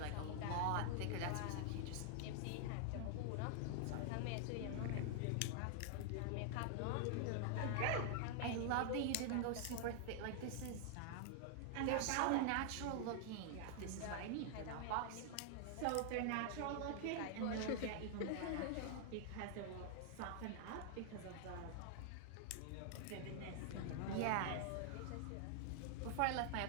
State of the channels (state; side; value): different; both; correlation 0.00